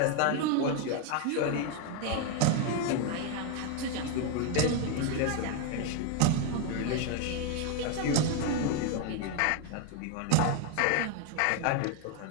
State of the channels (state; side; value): different; both; correlation 0.01